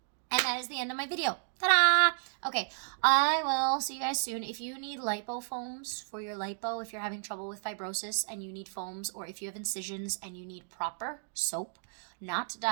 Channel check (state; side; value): silent; left; digital silence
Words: And that is the end of my video. Ta-da! Okay, I will see you guys soon. If you need lipo foams for your lipo, if you're having trouble with fibrosis and you need foams, or if you have incisions and you need proper soap, not